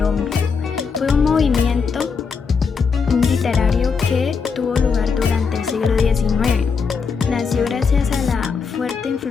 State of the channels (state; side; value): quieter; right; 5.5 dB